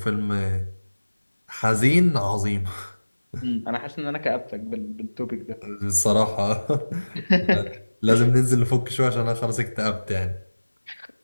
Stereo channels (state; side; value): inverted; both; correlation -1.00